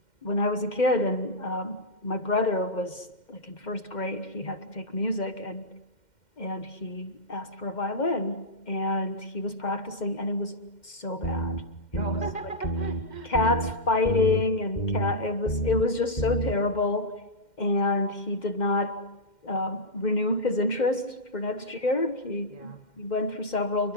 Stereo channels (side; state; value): right; late; 2.1 ms